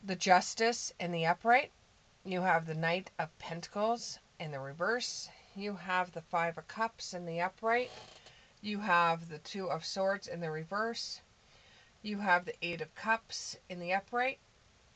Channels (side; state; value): both; identical; correlation 1.00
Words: the Justice in the upright. You have the Knight of Pentacles in the reverse. You have the Five of Cups in the upright. You have the Two of Swords in the reverse. You have the Eight of Cups in the upright.